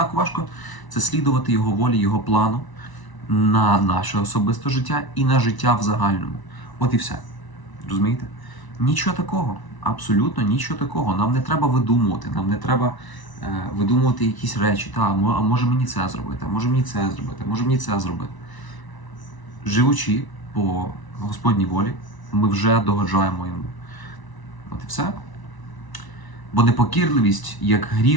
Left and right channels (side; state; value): right; late; 1.0 ms